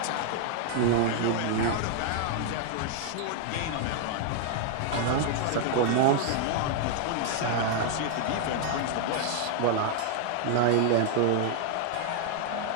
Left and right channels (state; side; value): different; both; correlation 0.00